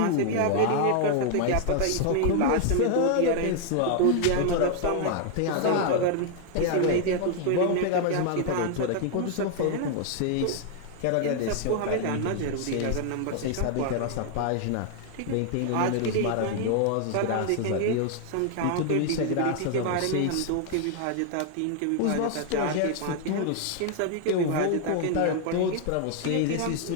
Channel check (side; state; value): both; different; correlation 0.00